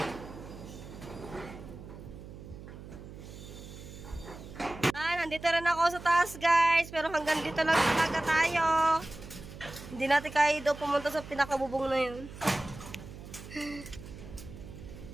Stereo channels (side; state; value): right; noise; hum, 14 dB below the sound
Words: Nandito rin ako sa taas, guys. Pero hanggang dito lang talaga tayo. Hindi natin kaya daw pumunta sa pinakabubong na yun.